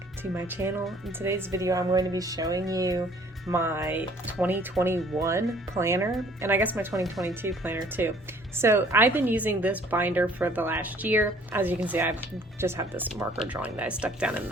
to my channel. In today's video, I'm going to be showing you my 2021 planner, and I guess my 2022 planner too. So I've been using this binder for the last year. As you can see, I just have this marker drawing that I stuck down in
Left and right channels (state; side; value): normal; both; correlation 0.57